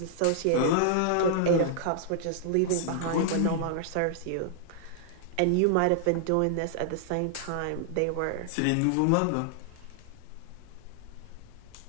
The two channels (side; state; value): both; different; correlation -0.01